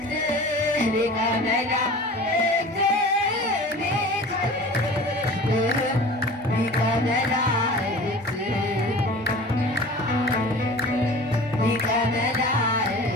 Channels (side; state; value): both; normal; correlation 0.40